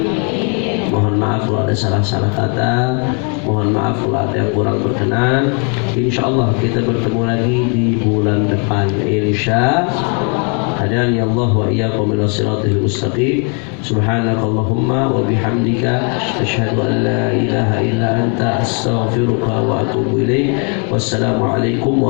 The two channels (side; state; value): right; quieter; 38.3 dB